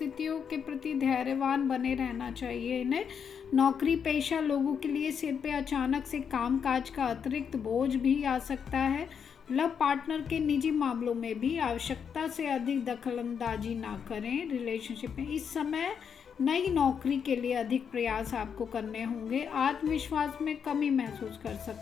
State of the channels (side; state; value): right; quieter; 7.1 dB